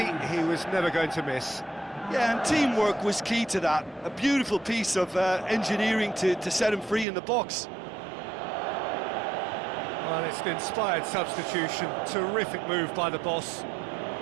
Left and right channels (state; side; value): drops out; left; at 7.1 s